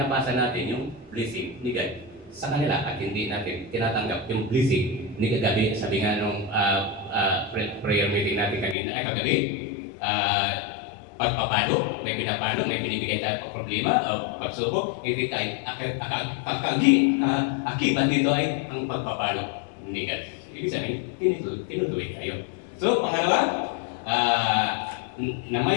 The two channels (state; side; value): drops out; right; at 8.8 s